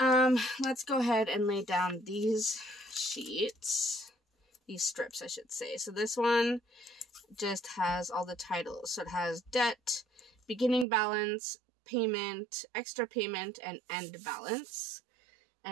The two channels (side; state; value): left; drops out; at 10.9 s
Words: go ahead and lay down these sheets. These strips, I should say. So this one just has all the titles. So it has debt, beginning balance, payment, extra payment, and end balance.